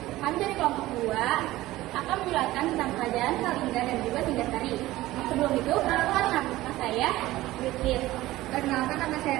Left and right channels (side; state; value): left; quieter; 17.0 dB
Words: Kami dari kelompok 2 akan menjelaskan tentang kerajaan Kalingga dan juga Singgasari. Sebelum itu, perkenalkan nama saya Witis. Perkenalkan nama saya